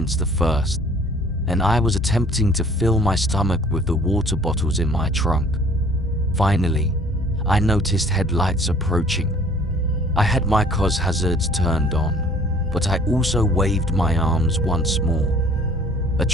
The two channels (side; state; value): both; normal; correlation 0.54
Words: the first, and I was attempting to fill my stomach with the water bottles in my trunk. Finally, I noticed headlights approaching. I had my car's hazards turned on, but I also waved my arms once more. A